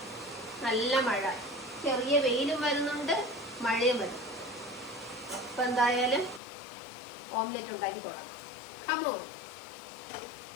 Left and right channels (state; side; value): drops out; right; at 6.4 s